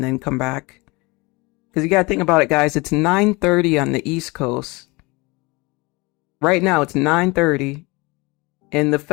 then come back. Because you got to think about it, guys. It's 9:30 on the East Coast. Right now, it's 9:30. And the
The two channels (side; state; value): right; quieter; 25.0 dB